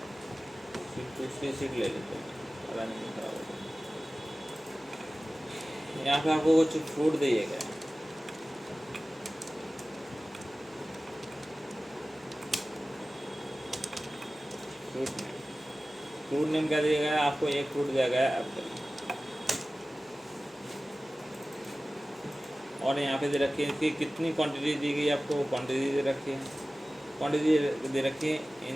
दूसरी सीट ले लेते हैं, पता नहीं खराब होता। यहाँ पे आपको कुछ फ्रूट दिएगा, फ्रूट नेम क्या दिया गया है आपको, एक फ्रूट दिया गया है एप्पल। और यहाँ पे दे रखी है इसकी कितनी क्वांटिटी दी गई आपको, क्वांटिटी दे रखी है, क्वांटिटी दे रखी है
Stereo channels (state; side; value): normal; both; correlation 0.96